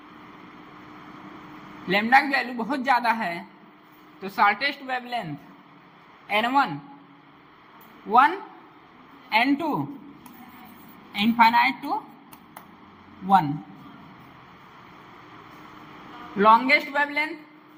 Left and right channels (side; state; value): both; identical; correlation 1.00